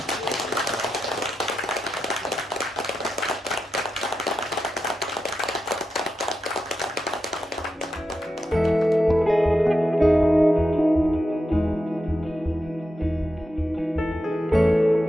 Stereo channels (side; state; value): both; normal; correlation 0.88